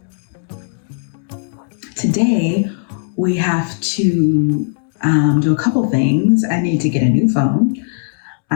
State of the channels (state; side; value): silent; right; 68 dB below the other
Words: Today, we have to do a couple things. I need to get a new phone.